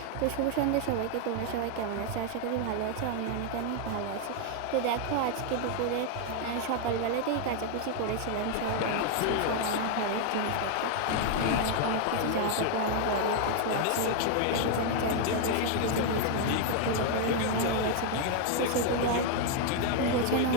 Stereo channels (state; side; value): different; both; correlation 0.00